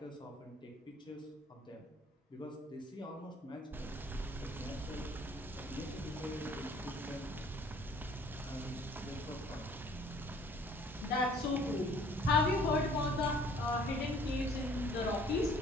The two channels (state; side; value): normal; both; correlation 0.55